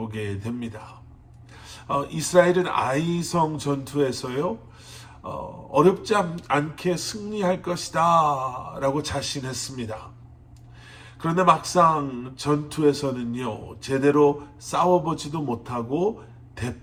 됩니다. 이스라엘은 아이성 전투에서요, 어렵지 않게 승리할 것이다 라고 자신했습니다. 그런데 막상 전투에서는요, 제대로 싸워보지도 못하고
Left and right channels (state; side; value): identical; both; correlation 1.00